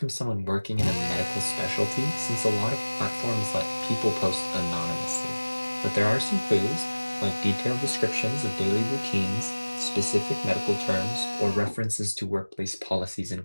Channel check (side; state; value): both; inverted; correlation -1.00